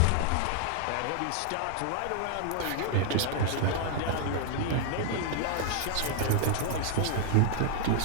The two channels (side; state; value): both; different; correlation 0.00